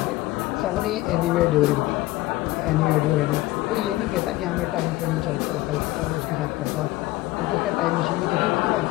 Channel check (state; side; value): quieter; right; 18.0 dB